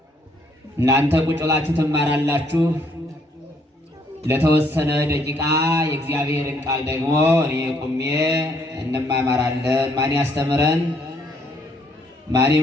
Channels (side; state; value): both; normal; correlation 0.68